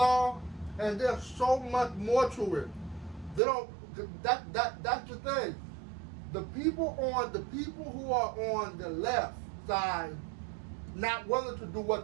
and there's so much more to it. They don't. That's the thing. The people who are on the left side not willing to do what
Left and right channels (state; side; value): drops out; left; at 3.4 s